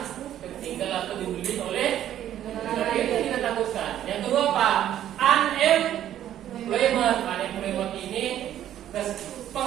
tertinggal atau dibeli oleh negara itu kita takutkan. Yang kedua apa? Unemployment ini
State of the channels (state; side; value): quieter; left; 11.5 dB